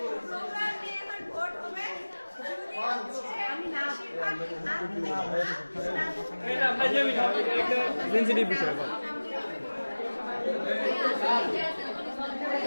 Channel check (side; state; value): both; inverted; correlation -1.00